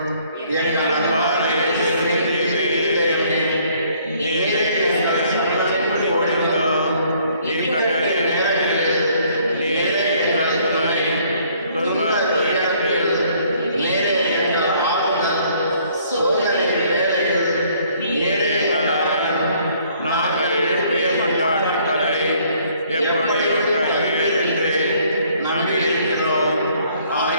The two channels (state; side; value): inverted; both; correlation -0.62